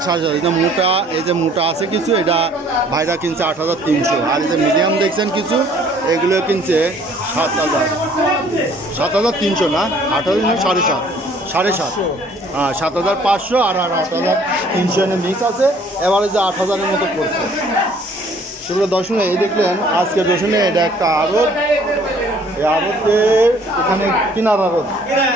7,500। এই যে মোটা, এই যে মোটা আছে কিছু, এটা ভাইরা কিনছে 8,300। আর এই যে মিডিয়াম দেখছেন কিছু, এগুলো কিনছে 7,300 না? 8,300 7,500। হ্যাঁ, 7,500 আর 8,300 এনে মিক্স আছে। এবারে যে 8,000-এর মতো পড়ছে। সেগুলো দর্শনে এই দেখলেন আজকের রসুনে এটা একটা আড়ত। এই আড়তের এখানে কিনার আড়ত,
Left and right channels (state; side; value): normal; both; correlation 0.58